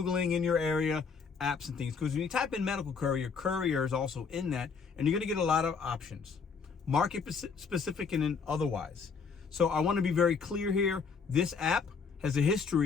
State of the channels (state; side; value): quieter; right; 5.5 dB